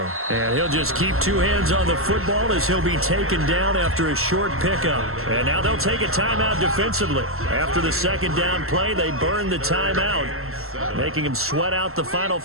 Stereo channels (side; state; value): left; late; 0.62 ms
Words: And he'll just keep 2 hands on the football as he'll be taken down after a short pickup. And now they'll take a timeout defensively. After the second down play, they burn the timeout, making him sweat out the final